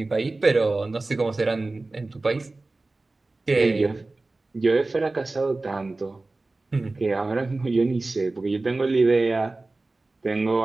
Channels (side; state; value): left; quieter; 3.2 dB